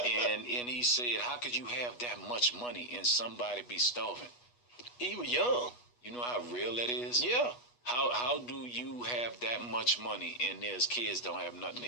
And he said, how could you have that much money and somebody be starving? He was young. You know how real that is? Yeah. How do you have that much money and there's kids don't have nothing to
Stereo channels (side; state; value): right; late; 8.2 ms